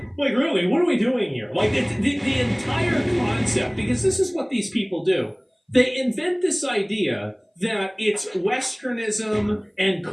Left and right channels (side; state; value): both; identical; correlation 1.00